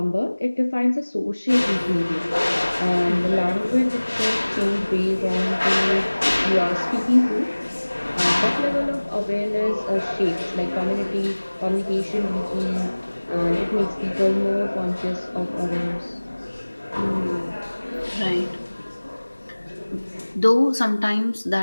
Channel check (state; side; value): inverted; both; correlation -1.00